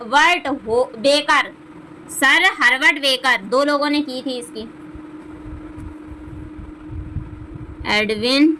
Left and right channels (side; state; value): both; identical; correlation 1.00